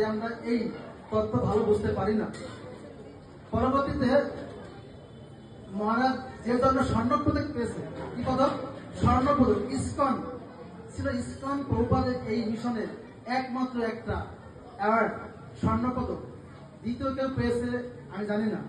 আমরা এই তত্ত্ব ভালো বুঝতে পারি না। পরবর্তীতে মহারাজ যে জন্য স্বর্ণপদক পেয়েছে, কি পদক? স্বর্ণপদক। ইসকন ছিল, ইসকন প্রভুপাদের এই মিশনের একমাত্র একটা অ্যাওয়ার্ড, স্বর্ণপদক। দ্বিতীয় কেউ পেয়েছে আমি জানি না,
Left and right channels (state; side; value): identical; both; correlation 1.00